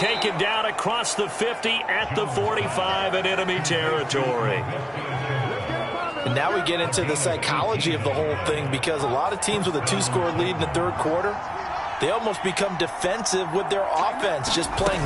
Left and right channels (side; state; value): both; identical; correlation 1.00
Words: down across the 50 at the 45 in enemy territory. And now we get into the psychology of the whole thing, because a lot of teams with a 2-score lead in the 3rd quarter, they almost become defensive with their offense, just